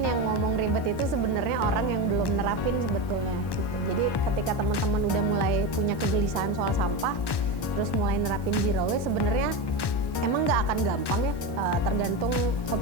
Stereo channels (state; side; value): late; right; 1.1 ms